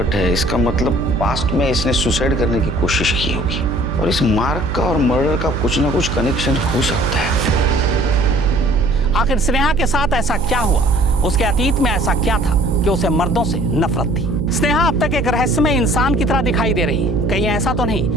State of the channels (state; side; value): noise; right; hum, 5 dB below the sound